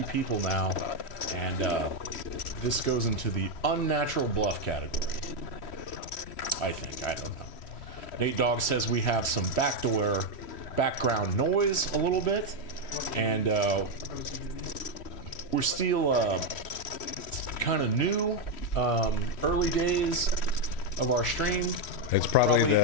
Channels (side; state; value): right; late; 3.1 ms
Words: people now, and this goes into the unnatural bluff category. I think. I don't know. Nate Dogg says we have some background noise a little bit, and we're still kind of new, early days of our stream. It's probably